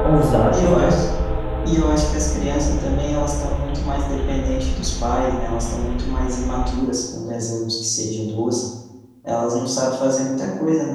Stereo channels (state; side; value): identical; both; correlation 1.00